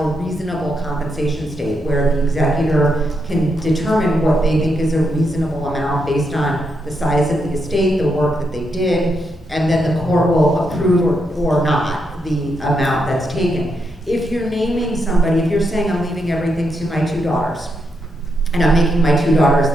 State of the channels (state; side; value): normal; both; correlation 0.81